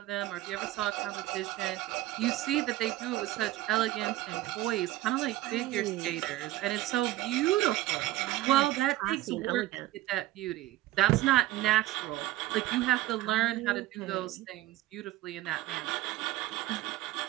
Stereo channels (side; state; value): left; quieter; 16.2 dB